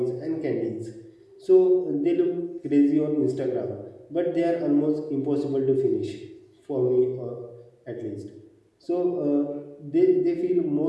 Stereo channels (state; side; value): identical; both; correlation 1.00